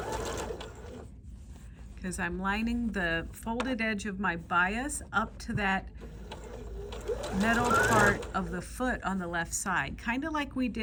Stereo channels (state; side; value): identical; both; correlation 1.00